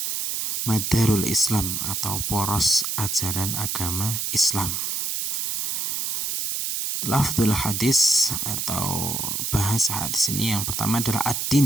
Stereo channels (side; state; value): right; noise; hiss, 1 dB below the sound